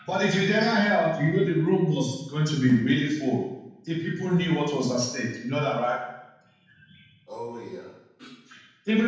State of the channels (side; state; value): both; identical; correlation 1.00